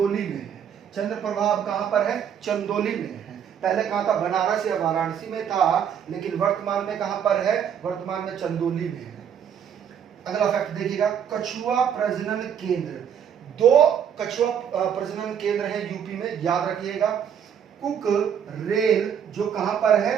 में है। चंद्रप्रभा अब कहां पर है? चंदौली में है। पहले कहां था? बनारस या वाराणसी में था, लेकिन वर्तमान में कहां पर है? वर्तमान में चंदौली में है। अगला फैक्ट देखिएगा, कछुआ प्रजनन केंद्र। 2 कछुआ प्रजनन केंद्र है यूपी में, याद रखिएगा। कुक रेल जो कहां पर है?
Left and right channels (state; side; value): quieter; left; 8.3 dB